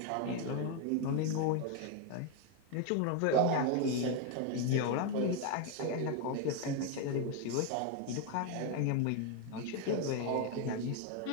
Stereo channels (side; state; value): both; different; correlation 0.01